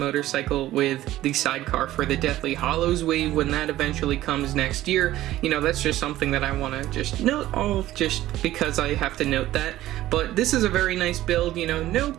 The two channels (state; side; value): quieter; left; 14.8 dB